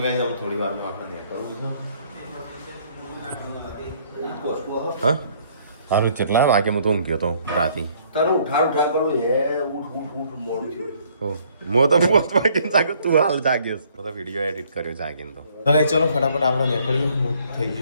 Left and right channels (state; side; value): inverted; both; correlation -0.63